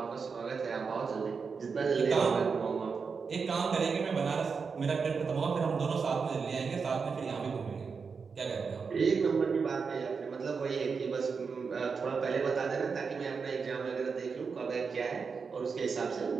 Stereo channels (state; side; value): quieter; left; 5.3 dB